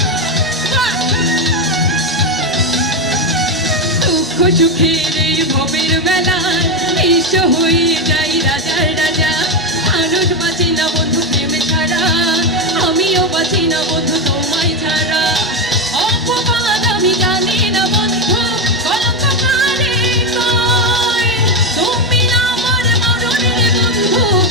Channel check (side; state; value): both; normal; correlation 0.10